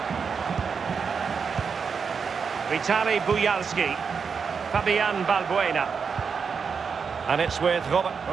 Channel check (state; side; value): quieter; left; 5.9 dB